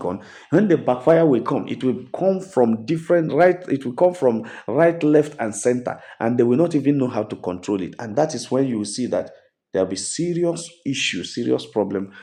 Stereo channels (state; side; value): identical; both; correlation 1.00